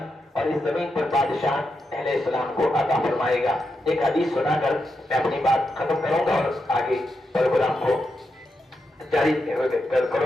और इस जमीन पर बादशाह अहले इस्लाम को अता फरमाएगा। एक हदीस सुनाकर मैं अपनी बात खत्म करूंगा और आगे प्रोग्राम को जारी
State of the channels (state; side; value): normal; both; correlation 0.85